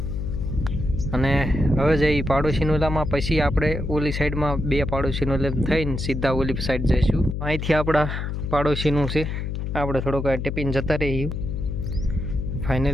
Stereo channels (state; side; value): noise; left; hum, 3 dB below the sound